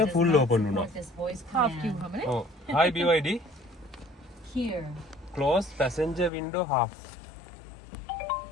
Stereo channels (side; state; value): right; drops out; at 6.3 s